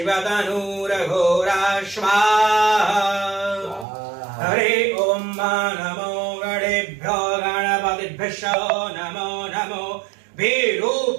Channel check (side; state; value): left; drops out; at 3.9 s